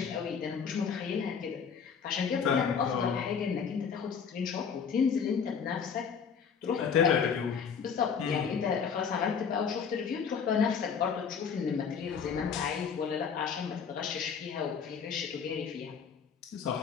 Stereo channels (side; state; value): right; quieter; 6.5 dB